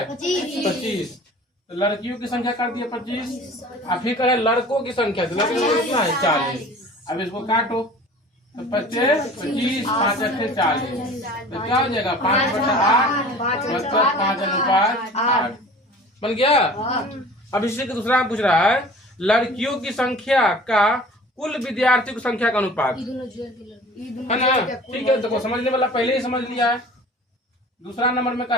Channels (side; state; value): both; normal; correlation 0.44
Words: 25। तो लड़कियों की संख्या कर दिया 25 और फिर करें लड़कों की संख्या, तो लड़कों की संख्या कितना है 40। अब इसको काटो तो 25 5 8 40। तो क्या हो जाएगा 5/8 मतलब 5 अनुपात 8 बन गया। अब इसी का दूसरा पूछ रहा है लड़कियों की संख्या का कुल विद्यार्थियों की संख्या का अनुपात है ना। ठीक है, देखो समझने वाला पहले ही समझ लिया है। दूसरा नंबर में